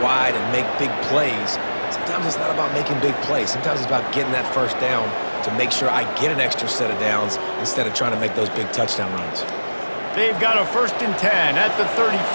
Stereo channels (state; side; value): inverted; both; correlation -1.00